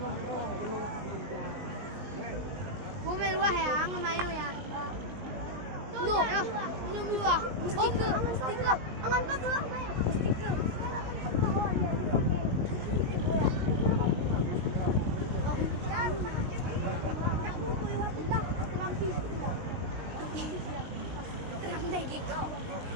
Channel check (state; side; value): late; left; 19 ms